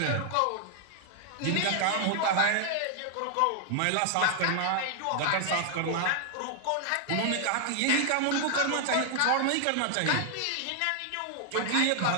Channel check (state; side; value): different; both; correlation -0.01